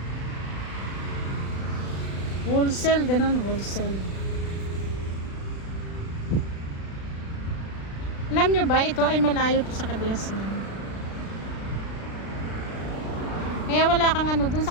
wholesale, ganun, wholesale. Alam nyo ba, ito ay malayo to sa Kabiasnan. Kaya wala kang dun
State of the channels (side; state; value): right; late; 36 ms